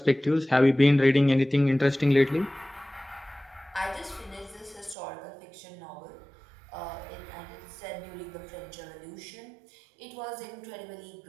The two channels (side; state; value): left; drops out; at 5.0 s